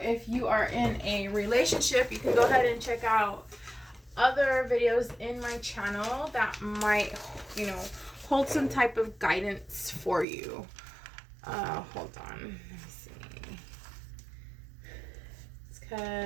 if you are in a relationship, you can go ahead and check out other videos in my channel that might, hold some type of guidance for you. Hold on. Let me see.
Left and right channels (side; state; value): left; drops out; at 10.2 s